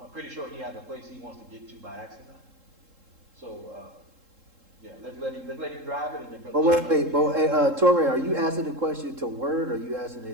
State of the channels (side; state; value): left; late; 3.7 ms